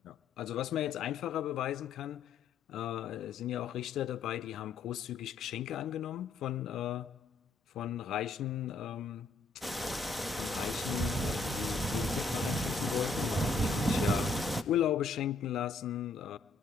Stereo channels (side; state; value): right; quieter; 3.8 dB